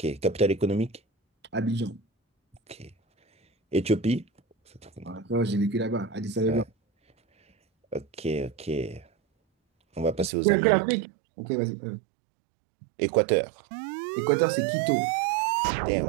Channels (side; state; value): left; drops out; at 10.3 s